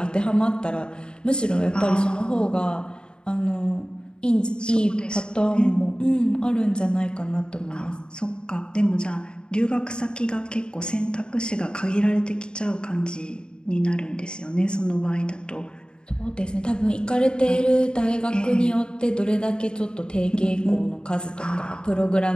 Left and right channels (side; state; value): right; late; 0.049 ms